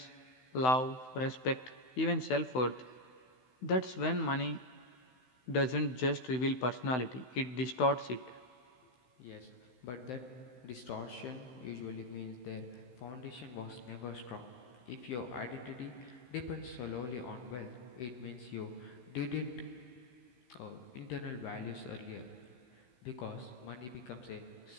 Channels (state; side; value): late; right; 16 ms